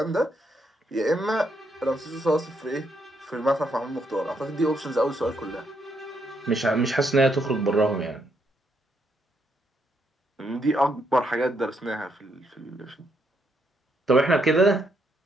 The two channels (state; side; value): normal; both; correlation 0.76